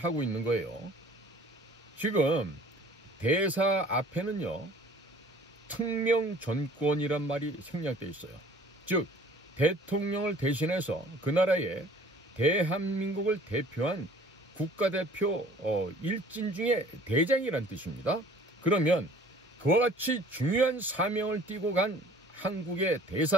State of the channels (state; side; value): normal; both; correlation 0.51